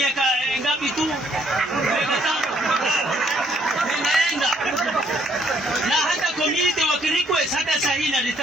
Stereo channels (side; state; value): both; normal; correlation 0.67